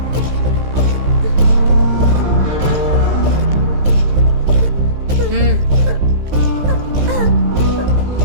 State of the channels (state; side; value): late; left; 15 ms